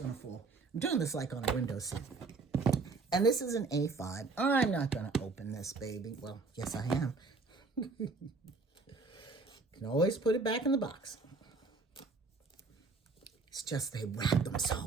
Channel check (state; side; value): quieter; left; 4.1 dB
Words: to fall. I'm doing this like on a window seat. And this is an A5. I'm not going to open this, baby. Well, yes, I am. Can always put it back in the box. It's just they wrap them